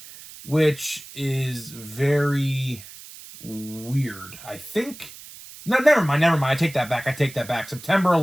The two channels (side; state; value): right; noise; hiss, 17 dB below the sound